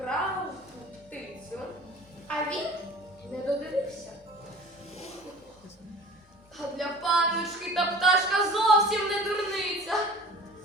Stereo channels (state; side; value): normal; both; correlation 0.43